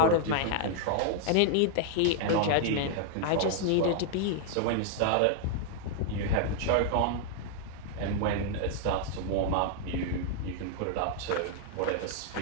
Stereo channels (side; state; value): both; different; correlation 0.00